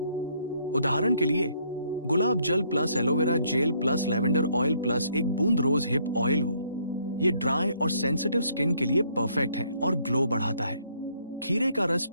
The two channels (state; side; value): inverted; both; correlation -0.67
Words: उदाहरण के लिए गुलाब जल plus aloe vera gel plus lavender oil plus एक बूंद रोज हिप ऑयल हो। ये ड्राई और सेंसिटिव स्किन के लिए परफेक्ट है और ग्लो बढ़ाता है। खीरे का रस